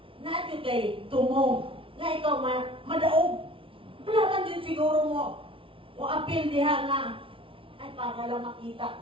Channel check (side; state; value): left; late; 0.25 ms